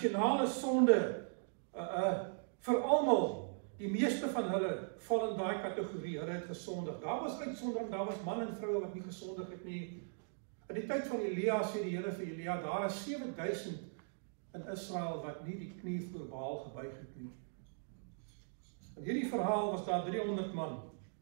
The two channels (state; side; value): silent; left; digital silence